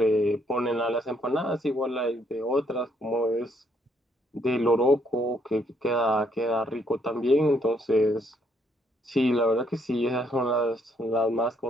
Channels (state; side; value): normal; both; correlation 0.70